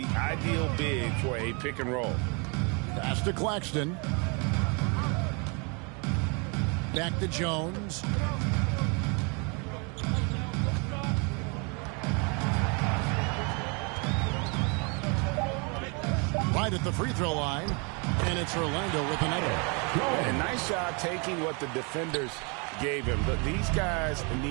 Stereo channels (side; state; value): left; quieter; 33.1 dB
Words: ideal big for a pick and roll. Pass to Claxton. Back to Jones. Right at the free throw line. And it's Orlando with another. And nice job taking what the defenders gave him. But these guys